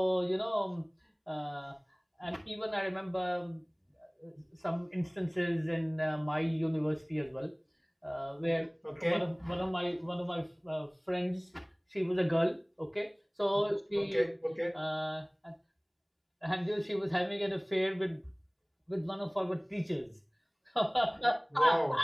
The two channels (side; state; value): both; identical; correlation 1.00